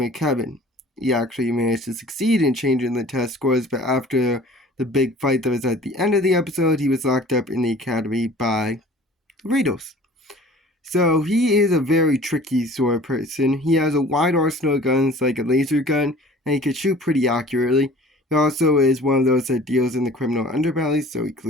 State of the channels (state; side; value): normal; both; correlation 0.47